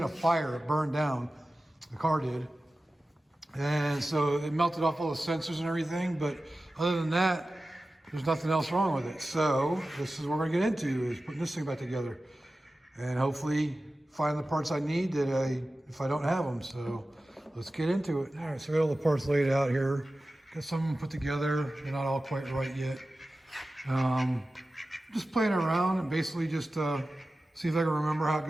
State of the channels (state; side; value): normal; both; correlation 0.95